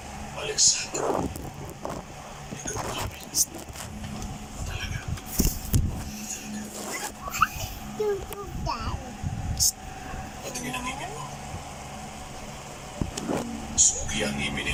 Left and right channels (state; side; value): identical; both; correlation 1.00